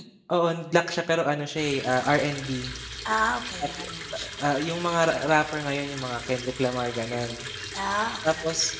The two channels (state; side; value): identical; both; correlation 1.00